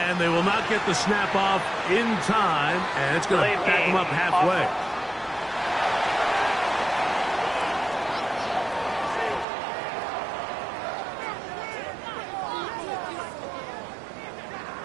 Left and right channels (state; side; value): drops out; left; at 9.5 s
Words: And they will not get the snap off in time, and it's going to back them up halfway.